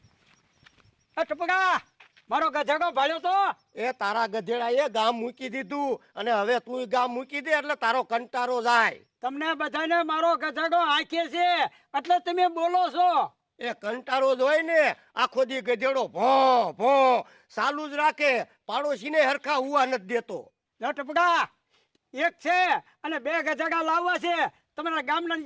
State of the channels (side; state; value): both; identical; correlation 1.00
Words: ટપકા, મારો ગધેડો ભાળ્યો તો? એ તારા ગધેડા એ ગામ મૂકી દીધું અને હવે તું ગામ મૂકી દે એટલે તારો કંટારો જાય. તમને બધાને મારો ગધેડો આંખે છે એટલે તમે બોલો છો. એ કંટારો જ હોય ને, આખો દી ગધેડો ભો ભો ચાલુ જ રાખે, પાડોશીને હરખા હુવા નથી દેતો. ટપકા, એક છે અને બે ગધેડા લાવવા છે. તમારા ગામના